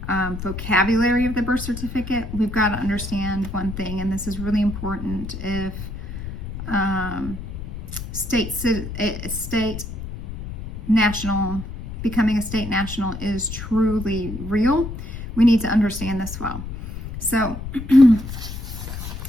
vocabulary of the birth certificate, we've got to understand one thing, and this is really important. If becoming a state national is truly real, we need to understand this well. So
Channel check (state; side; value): noise; left; rumble, 8 dB below the sound